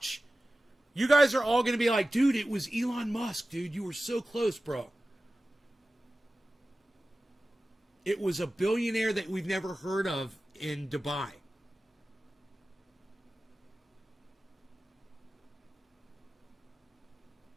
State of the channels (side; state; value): both; normal; correlation 0.95